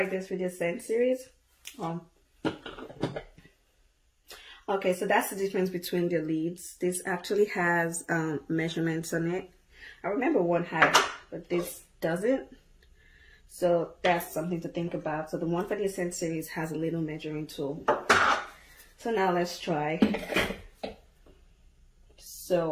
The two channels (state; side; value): identical; both; correlation 1.00